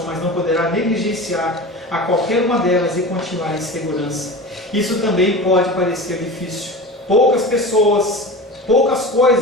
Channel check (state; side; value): normal; both; correlation 0.31